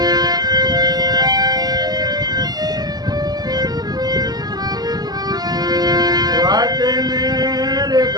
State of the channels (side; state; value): left; late; 0.19 ms